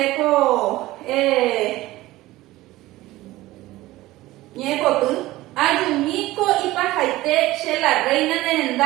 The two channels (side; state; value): left; quieter; 17.6 dB